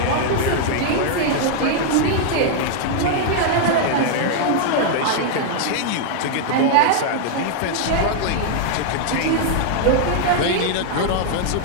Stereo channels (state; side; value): different; both; correlation -0.01